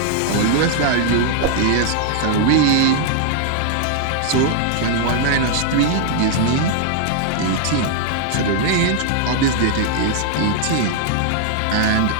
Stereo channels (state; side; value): different; both; correlation -0.01